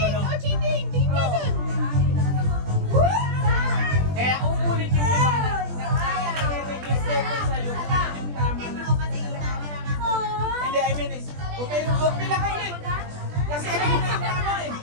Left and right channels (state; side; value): late; left; 20 ms